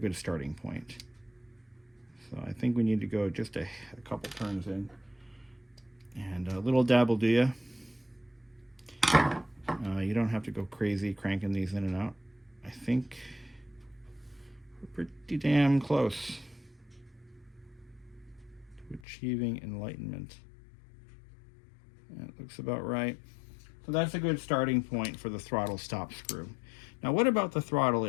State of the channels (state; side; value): drops out; right; at 19.0 s